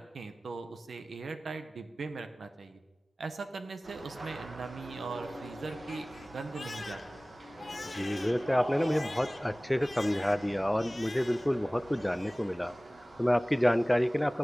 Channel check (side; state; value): both; normal; correlation 0.98